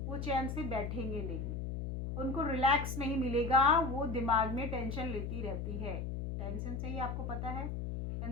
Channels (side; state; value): left; noise; hum, 4 dB below the sound